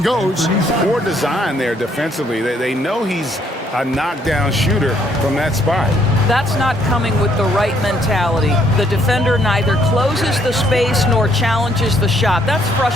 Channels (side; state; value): both; normal; correlation 0.68